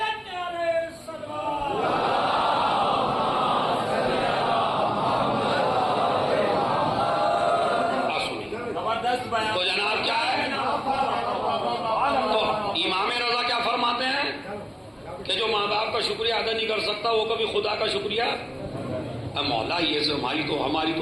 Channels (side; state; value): both; identical; correlation 1.00